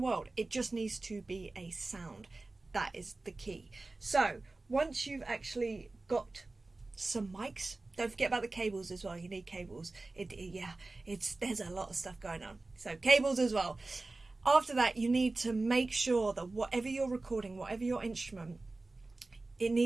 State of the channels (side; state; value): left; quieter; 3.2 dB